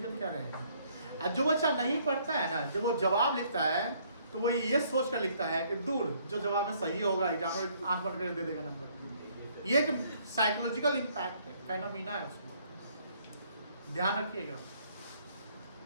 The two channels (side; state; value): both; inverted; correlation -0.65